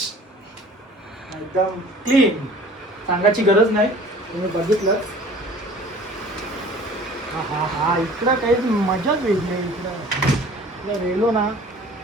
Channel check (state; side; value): normal; both; correlation 0.47